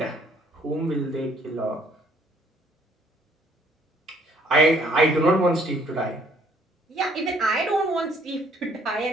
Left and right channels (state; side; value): normal; both; correlation 0.63